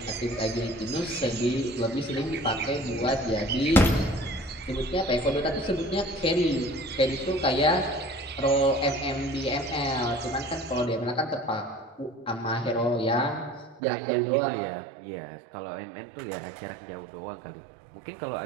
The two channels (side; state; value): left; drops out; at 13.8 s